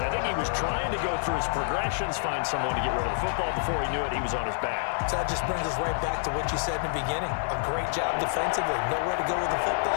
I think he was trying to go through his progressions, find someone to get rid of the football. Before he knew it, he was on his back. So that just brings us right back to what you said in the beginning. A great job defensively. Nowhere to go with the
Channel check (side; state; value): right; silent; digital silence